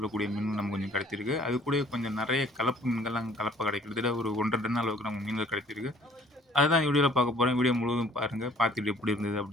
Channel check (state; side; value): normal; both; correlation 0.56